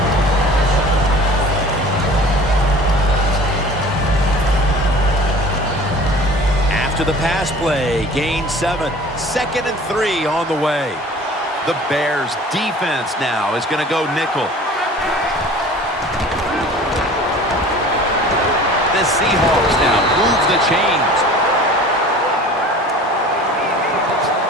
To the pass play, gain 7, 2nd and 3 on the way. The Bears defense now is going to go nickel. The Seahawks now move the chains.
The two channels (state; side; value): normal; both; correlation 0.44